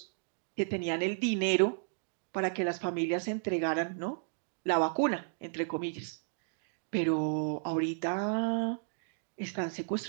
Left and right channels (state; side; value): silent; left; digital silence